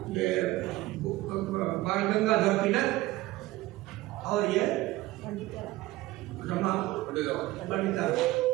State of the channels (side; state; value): left; quieter; 18.3 dB